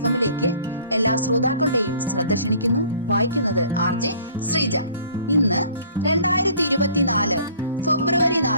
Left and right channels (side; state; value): both; inverted; correlation -0.53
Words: എല്ലാ ശ്രോതാക്കളുടെയും ശ്രദ്ധ ക്ഷണിക്കുന്നു. വായിക്കുന്നത് RJ ശ്രീജ. ഇന്ന് 2024 ഫെബ്രുവരി